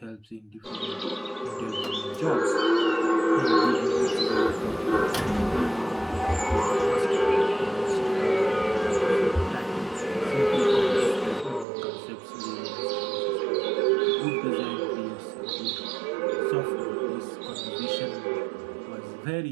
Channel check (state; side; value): drops out; left; at 11.7 s